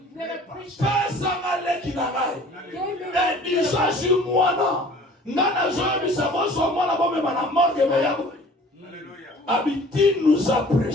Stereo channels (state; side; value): normal; both; correlation 0.49